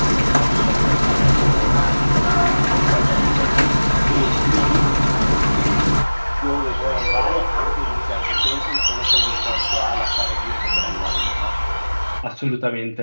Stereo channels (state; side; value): inverted; both; correlation -1.00